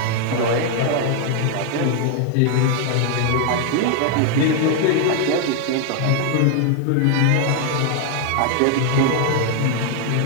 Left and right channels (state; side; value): different; both; correlation 0.00